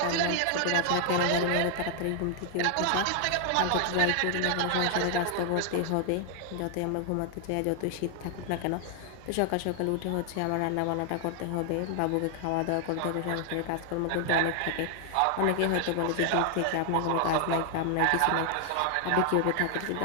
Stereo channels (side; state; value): both; different; correlation 0.00